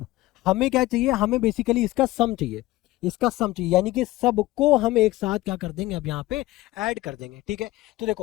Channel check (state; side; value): quieter; right; 17.8 dB